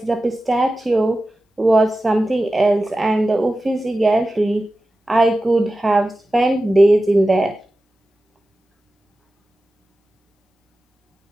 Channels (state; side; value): normal; both; correlation 0.94